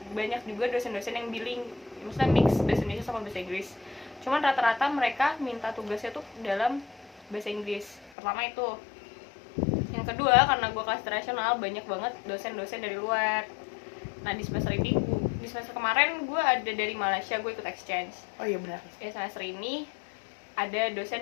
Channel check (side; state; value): right; drops out; at 8.1 s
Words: banyak juga dosen-dosen yang billing, maksudnya mix bahasa Indonesia sama bahasa Inggris. Cuman rata-rata mereka minta tugasnya tuh dalam bahasa Inggris. Pertama itu. Yang kedua, karena gue kelas internasional, banyak banget dosen-dosen dari luar. Nah di semester kemarin gue ada dari Malaysia, gue ikut exchange. Oh iya benar. Ya semester ini ada